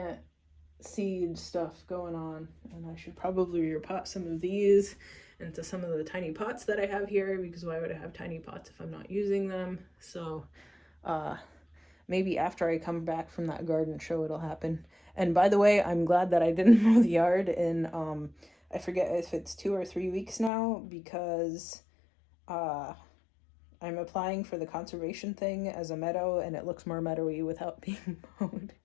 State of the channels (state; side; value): drops out; right; at 20.5 s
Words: seed stuff going on, and I should probably repot some of these into some of the tiny pots that I have here, because why would I have tiny pots if I'm not using them? So maybe after I come back from that garden show it'll happen. And by the way, I'm glad that I didn't mow the yard in I forget if it's 2 or 3 weeks now, because I'm applying for the conservation thing as a meadow, and it looks more meadowy without being mowed.